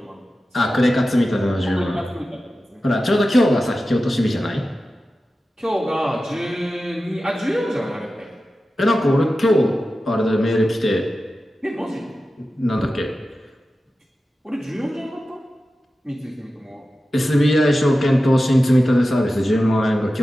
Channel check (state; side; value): normal; both; correlation 0.93